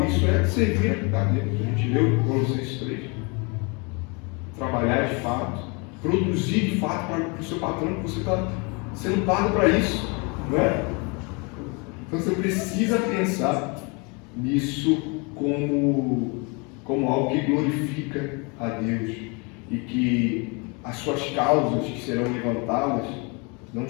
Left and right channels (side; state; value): right; quieter; 31.1 dB